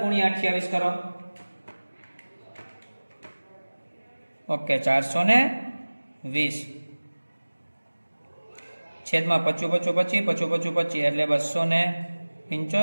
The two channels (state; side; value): inverted; both; correlation -1.00